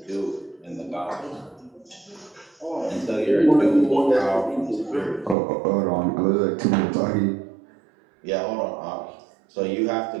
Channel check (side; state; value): left; drops out; at 5.4 s